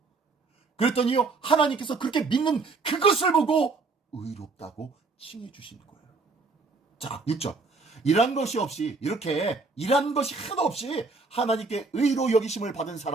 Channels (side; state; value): left; quieter; 4.1 dB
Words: 그랬더니요, 하나님께서 그렇게 믿는 그것을 보고 의롭다고 칭해 주시는 거예요. 자, 6절. 이런 것이 하나도 없이 하나님께 의로 여기심을 받은